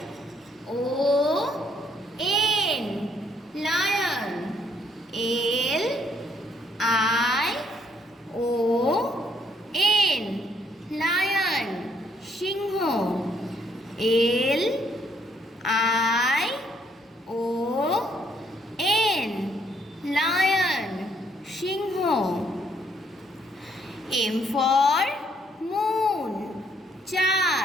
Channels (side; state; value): both; normal; correlation 0.69